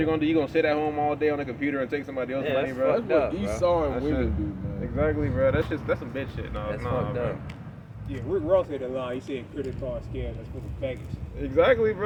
gonna do. You gonna sit at home all day on a computer and take somebody else's Yeah, money, that's bro? That's what up, bro. Esau and That's women it. do, man. Exactly, bro. That's some bitch shit. No, That's no, fucked bro. up. Yeah, Rick Ross had a line. He said credit card scams that's for the faggots. Exactly,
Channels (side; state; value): both; identical; correlation 1.00